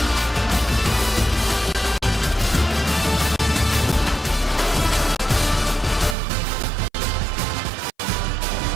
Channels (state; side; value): drops out; left; at 6.2 s